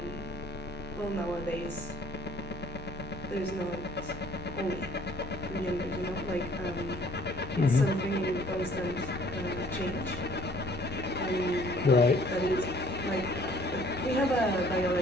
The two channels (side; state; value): both; normal; correlation 0.57